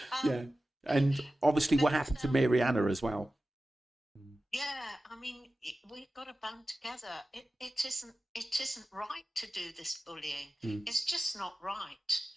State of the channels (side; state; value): both; normal; correlation 0.94